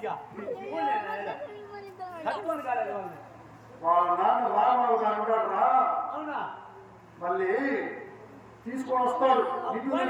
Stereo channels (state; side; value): identical; both; correlation 1.00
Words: కట్టుకొని కాలేదు వాళ్ళని. వాళ్ళ నాన్న రామావు అంటాడురా. అవునా? మళ్ళీ తీసుకొని వస్తాడు.